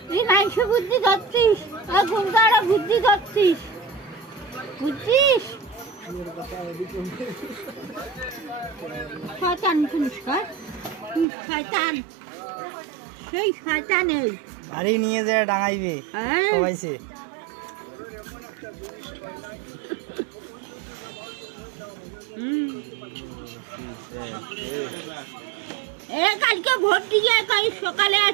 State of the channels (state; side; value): drops out; left; at 11.2 s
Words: তুই মাংস বুদ্ধি ধরছিস গুন্ডারা বুদ্ধি ধরছিস বুঝছিস শয়তান শুনিস শয়তান সেই শয়তান এই বাড়ি নিয়ে যায় ডাঙাইবে সবাইছে কালকে ভোট দিয়ে কাল সকালে